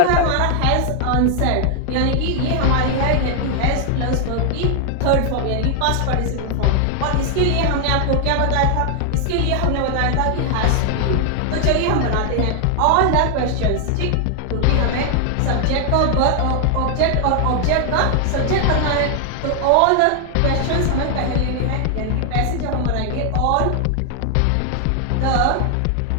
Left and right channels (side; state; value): both; different; correlation 0.00